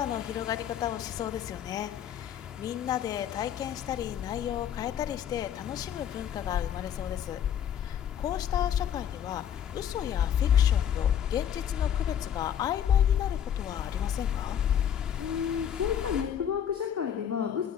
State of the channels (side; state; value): right; quieter; 9.4 dB